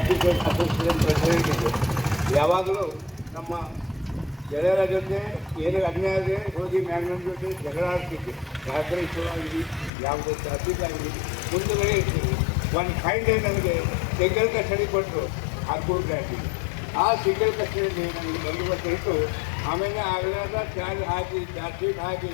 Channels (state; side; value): drops out; right; at 9.9 s